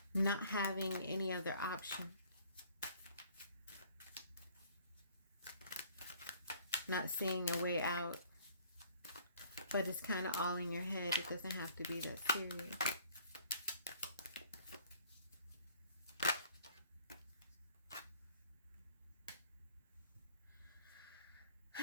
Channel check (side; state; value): both; inverted; correlation -0.56